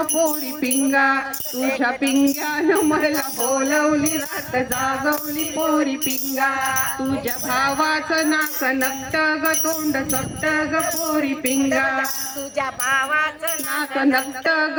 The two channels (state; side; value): identical; both; correlation 1.00